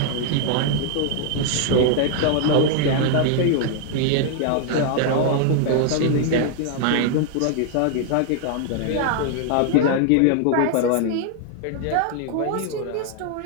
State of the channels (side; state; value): both; different; correlation 0.00